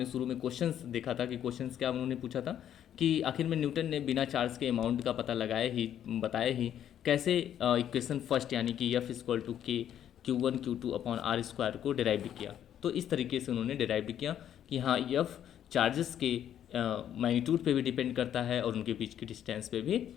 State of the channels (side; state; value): right; quieter; 10.2 dB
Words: शुरू में क्वेश्चंस देखा था कि क्वेश्चंस क्या उन्होंने पूछा था कि आखिर में न्यूटन ने बिना चार्ज के अमाउंट का पता बताया ही कैसे इक्वेशन फर्स्ट यानी कि F=K Q1 Q2/r² को डिराइव किया। तो इस तरीके से उन्होंने डिराइव किया कि हाँ, F चार्जेस के मैग्नीट्यूड पे भी डिपेंड करता है और उनके बीच की डिस्टेंस पे भी